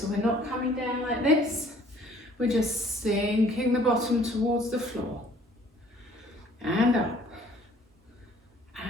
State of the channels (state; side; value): normal; both; correlation 0.56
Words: we're not coming down like this. We're just sinking the bottom towards the floor. And up.